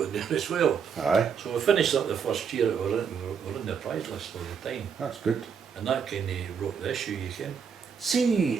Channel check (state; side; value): quieter; left; 6.7 dB